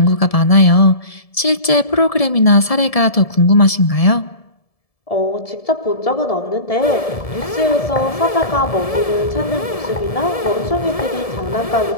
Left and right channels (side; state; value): right; late; 1.7 ms